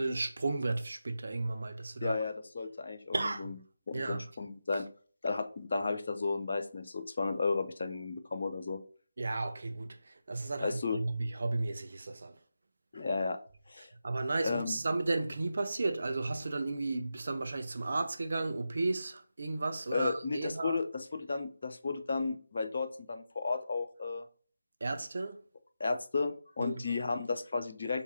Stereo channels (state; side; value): inverted; both; correlation -0.89